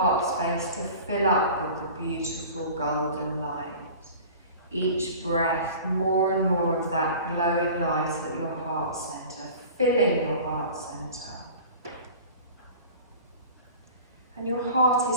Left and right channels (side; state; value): both; inverted; correlation -0.40